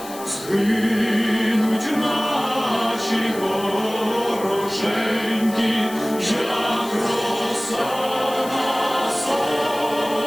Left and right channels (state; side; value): noise; left; hiss, 15 dB below the sound